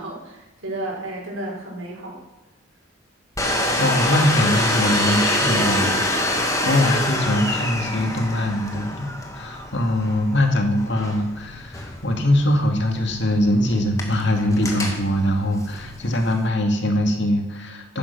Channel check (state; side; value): normal; both; correlation 0.60